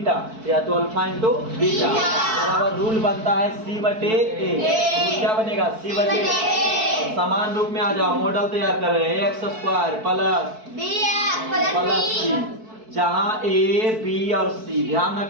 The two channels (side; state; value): left; late; 4.6 ms